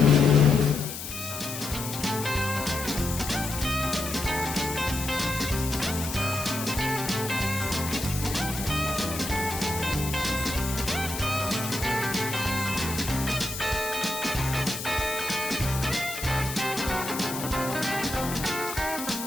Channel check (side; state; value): left; noise; hiss, 8 dB below the sound